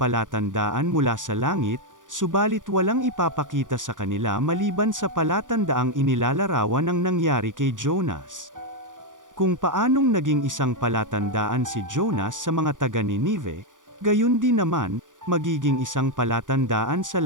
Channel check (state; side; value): late; left; 0.87 ms